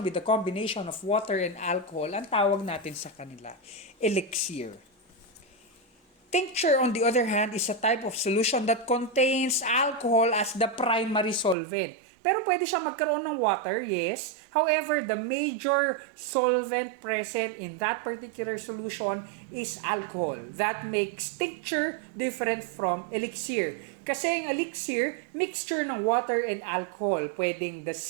with a combination of water and alcohol, ang tawag natin sa kanila, elixir. Tincture, on the other hand, is a type of solution that contains alcohol as the primary solvent. Pero pwede siya magkaroon ng water, yes. However, the major solvent present in that particular solution is alcohol. That makes tincture different from elixir. Kasi ang elixir, mixture ng water and alcohol. Pwedeng the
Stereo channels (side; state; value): left; drops out; at 11.6 s